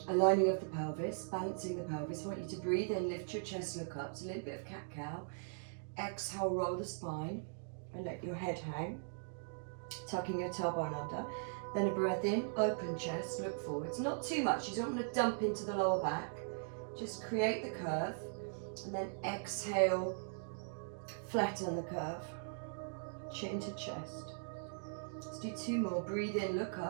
aligning of the pelvis, balancing the pelvis. I want you to breathe in, lift your chest, look up. So a little bit of cat-cow. Exhale, roll the spine and let your head hang, tucking your tailbone under. Then a breath in, open chest, look forwards. Not too much, you don't want to dump into the lower back. Just create the curve, and then exhale, flatten the curve, chin to chest. Let's do 2 more. Breathe in, look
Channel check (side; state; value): left; silent; digital silence